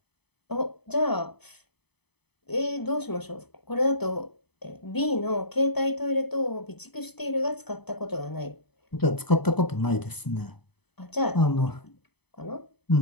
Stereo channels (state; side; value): late; right; 0.98 ms